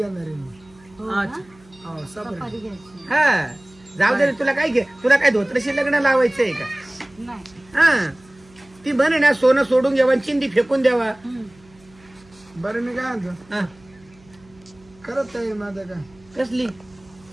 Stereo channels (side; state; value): right; noise; hum, 27 dB below the sound